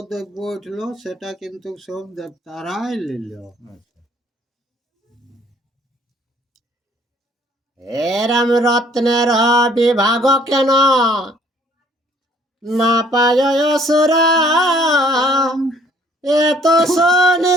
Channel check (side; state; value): both; normal; correlation 0.60